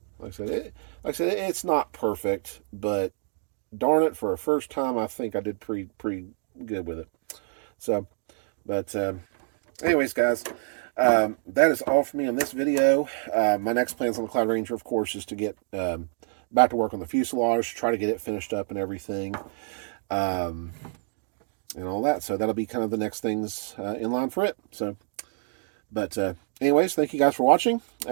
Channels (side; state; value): left; silent; digital silence